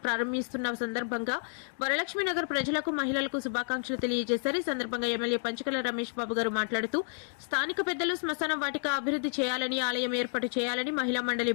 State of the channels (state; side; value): silent; right; digital silence